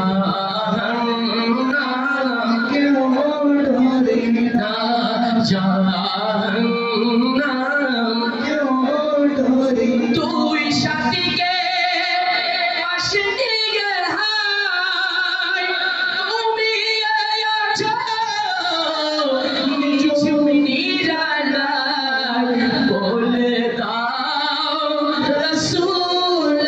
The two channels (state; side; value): identical; both; correlation 1.00